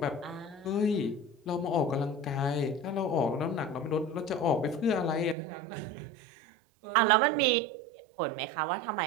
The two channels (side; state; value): left; drops out; at 5.4 s